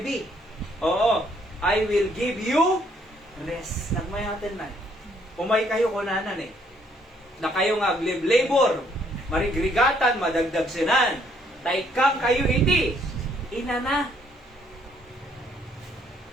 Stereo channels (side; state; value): both; normal; correlation 0.67